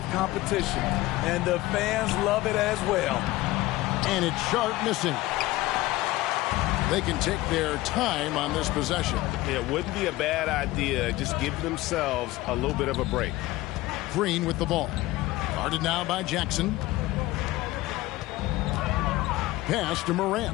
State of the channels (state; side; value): quieter; right; 18.1 dB